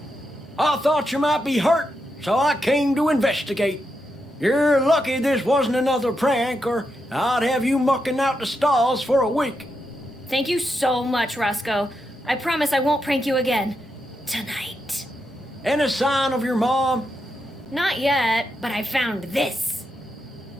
I thought you might be hurt, so I came to investigate. You're lucky this wasn't another prank, or I'd have you mucking out the stalls for a week. Thank you so much, Roscoe. I promise I won't prank you again. Tonight. Any sign of your mom? Not yet, but I found this.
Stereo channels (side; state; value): both; normal; correlation 0.84